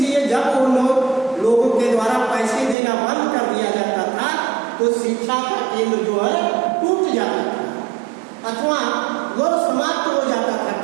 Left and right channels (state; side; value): drops out; left; at 2.8 s